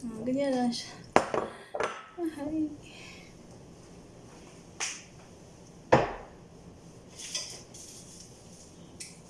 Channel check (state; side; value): identical; both; correlation 1.00